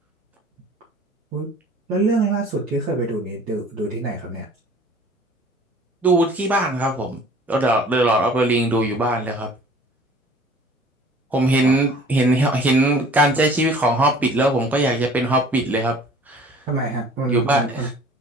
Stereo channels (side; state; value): both; normal; correlation 0.49